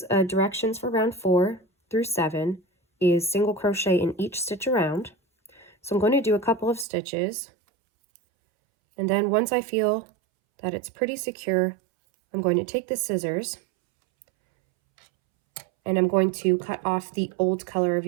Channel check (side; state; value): left; drops out; at 6.9 s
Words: directions for round 4 through 7 is single crochet in each stitch around. So I'm going to do a couple of stitches, and then once I feel that it's pretty secure, I'm going to take the scissors and I'm going to cut off the old color of